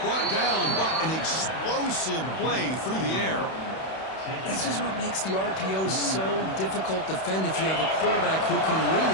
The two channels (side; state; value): right; late; 31 ms